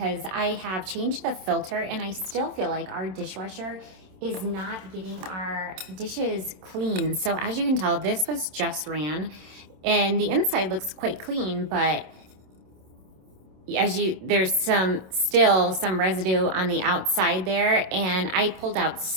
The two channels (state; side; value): late; left; 27 ms